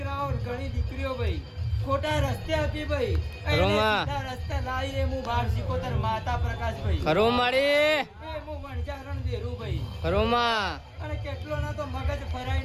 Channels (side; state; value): both; identical; correlation 1.00